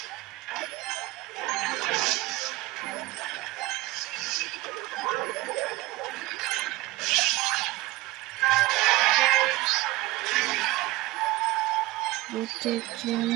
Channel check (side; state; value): left; quieter; 18.9 dB